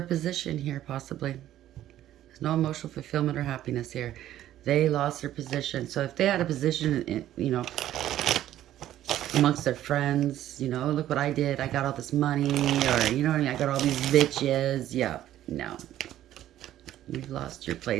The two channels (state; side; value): quieter; left; 12.7 dB